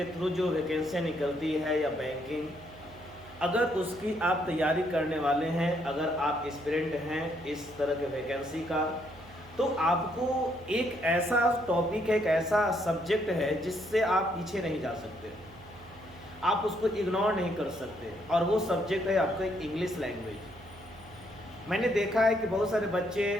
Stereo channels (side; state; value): right; noise; hum, 21 dB below the sound